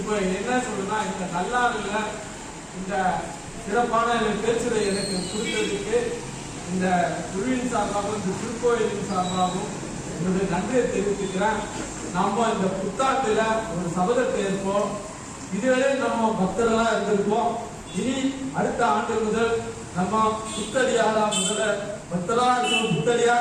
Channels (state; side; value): identical; both; correlation 1.00